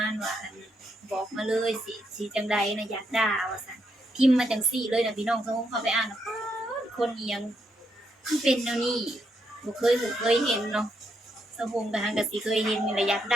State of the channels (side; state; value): both; normal; correlation 0.78